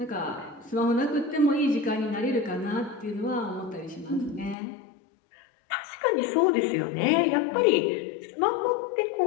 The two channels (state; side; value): drops out; right; at 4.5 s